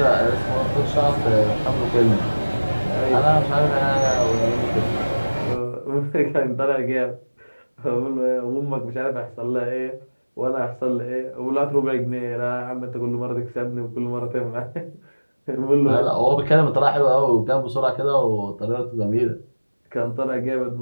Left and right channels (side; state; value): both; inverted; correlation -1.00